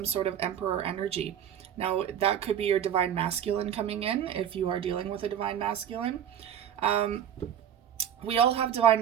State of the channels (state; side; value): quieter; left; 9.6 dB